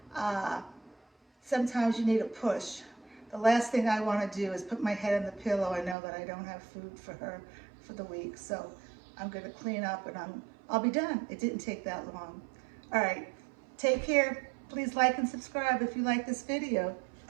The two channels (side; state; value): left; drops out; at 6.0 s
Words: Sometimes you need a push. The last thing I want to do is put my head in the pillow. I know that I don't have food for her for the week. So I'm going to clean up and I'll be done. It didn't take that long. All right. Take care. Please like and subscribe if you like this video.